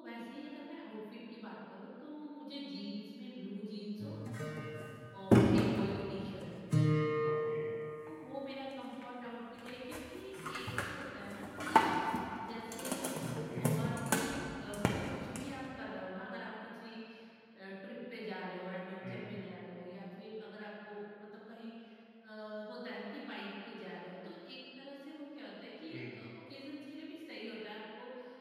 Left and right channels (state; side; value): identical; both; correlation 1.00